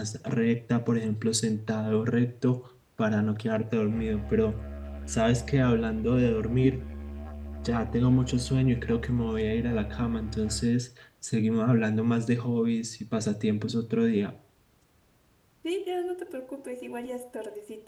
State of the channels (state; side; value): identical; both; correlation 1.00